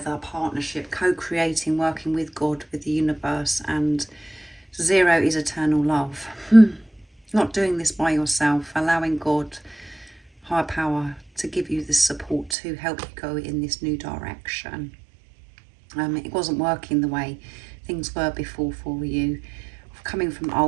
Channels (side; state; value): left; drops out; at 12.6 s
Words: partnership, co-creating, working with God, with the universe, and 0 is eternal love. Not doing this by yourself, allowing God, higher power, to give you the support to help you go in this new direction. It wasn't working the way things were before for you, coming from